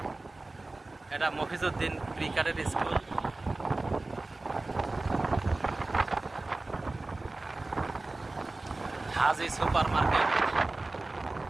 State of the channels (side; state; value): left; quieter; 3.1 dB